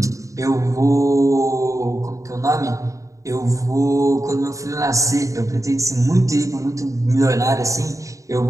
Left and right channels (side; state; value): left; late; 0.16 ms